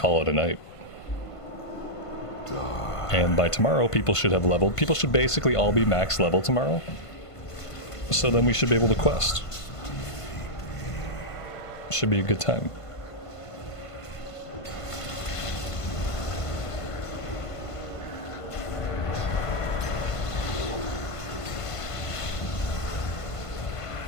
it a night. And by tomorrow people should have leveled. People should basically all be max level tomorrow. So then we should be able to quest. Should be a good time.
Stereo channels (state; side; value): late; right; 1.5 ms